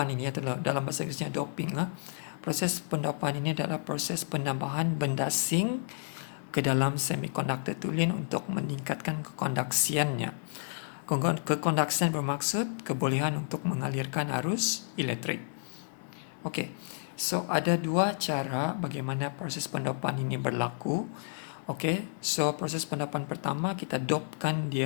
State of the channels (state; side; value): silent; right; 57 dB below the other